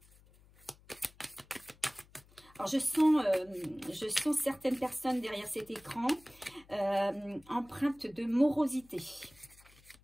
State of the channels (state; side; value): noise; left; hum, 26 dB below the sound